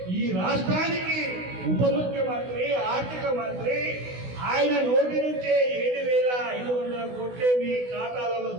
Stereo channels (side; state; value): left; late; 16 ms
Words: ఈ రాష్ట్రానికి ఉప ముఖ్యమంత్రి ఆర్థిక మంత్రి ఆయన నోటి నుంచే 7,500 కోట్లే మీ ఖాతాలలో